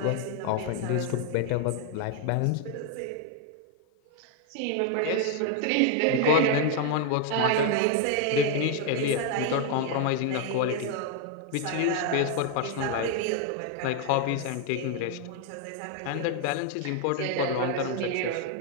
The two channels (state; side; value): different; both; correlation 0.01